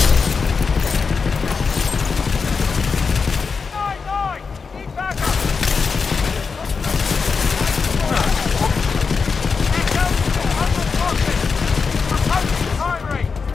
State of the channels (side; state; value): right; quieter; 5.2 dB